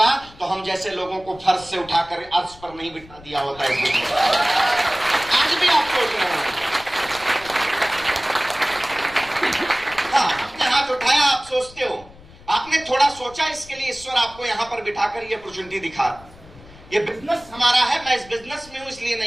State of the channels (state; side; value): noise; left; rumble, 22 dB below the sound